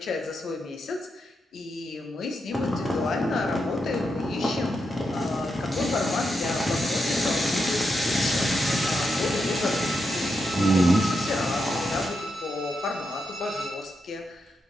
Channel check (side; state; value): both; normal; correlation 0.84